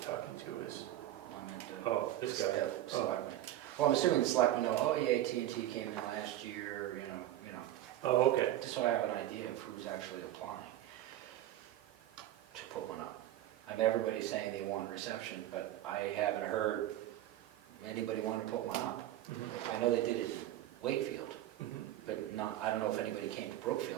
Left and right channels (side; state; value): left; quieter; 13.6 dB